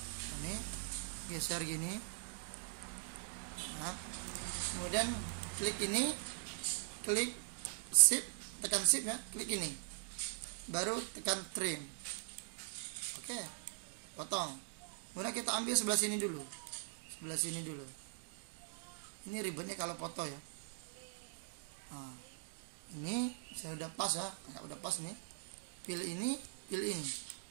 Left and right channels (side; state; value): left; silent; digital silence